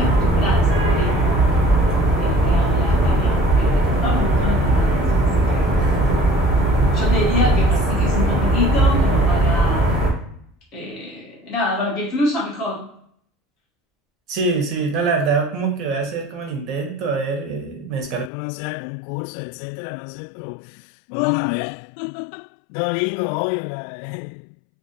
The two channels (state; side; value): drops out; right; at 18.3 s